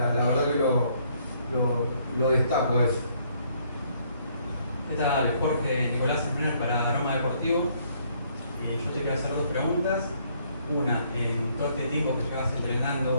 verdad que lo destaco a eso. ¿Qué tal? Jorge Nicolás Sempner para Aroma Deportivo. Yo te quiero hacer 2 preguntas. Una, en todo este tiempo que llevas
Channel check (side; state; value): both; inverted; correlation -0.67